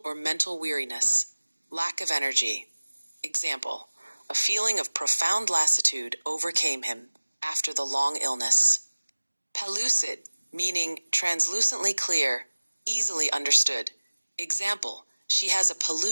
or mental weariness, lack of energy. Example, a feeling of profound lassitude overcame him after the long illness. Pellucid, meaning translucently clear, easily understood. Example, she has a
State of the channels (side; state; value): both; inverted; correlation -1.00